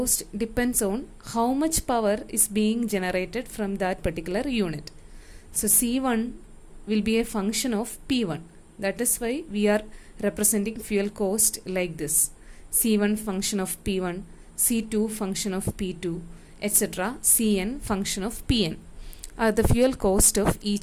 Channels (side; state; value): both; identical; correlation 1.00